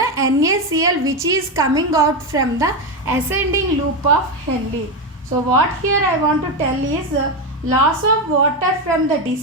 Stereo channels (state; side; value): normal; both; correlation 0.11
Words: NaCl which is coming out from the ascending loop of Henle. So what here I want to tell is loss of water from the